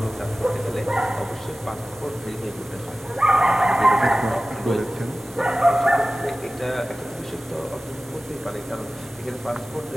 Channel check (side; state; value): both; normal; correlation 0.96